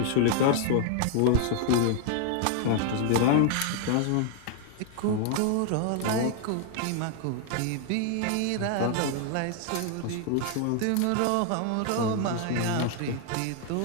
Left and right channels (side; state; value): both; different; correlation 0.00